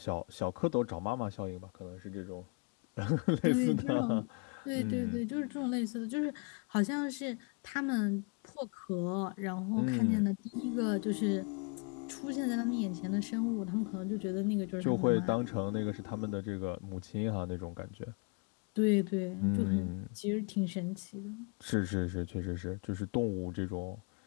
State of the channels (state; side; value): quieter; right; 33.6 dB